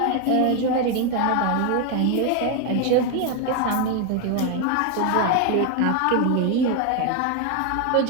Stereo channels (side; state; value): both; different; correlation 0.01